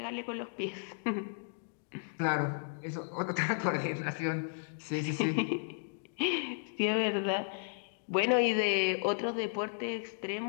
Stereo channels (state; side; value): silent; right; digital silence